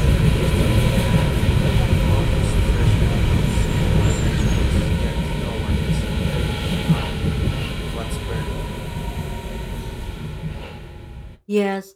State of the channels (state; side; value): identical; both; correlation 1.00